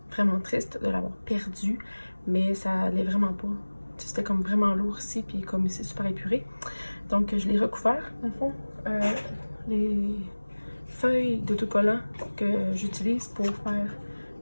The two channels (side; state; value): both; inverted; correlation -1.00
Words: Vraiment triste de l'avoir perdu, mais ça allait vraiment pas. C'était comme vraiment lourd ici, puis comme c'est super épuré. Donc, je l'ai recouvert, dans le fond. Les feuilles d'autocollant que j'utilise pour faire